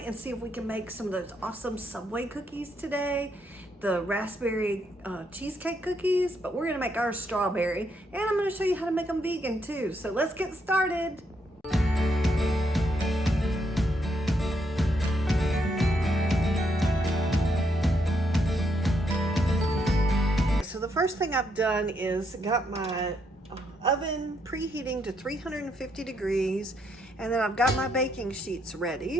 see if we can make some of those awesome Subway cookies today, the raspberry cheesecake cookies, but we're gonna make ours strawberry, and I'm gonna show you how to make them vegan too. So let's get started. So the first thing I've done is got my oven preheating to 350 degrees, and then I've got my baking sheets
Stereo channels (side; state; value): both; normal; correlation 0.76